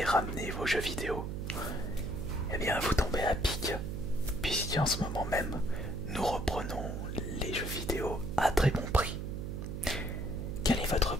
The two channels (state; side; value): noise; right; hum, 4 dB below the sound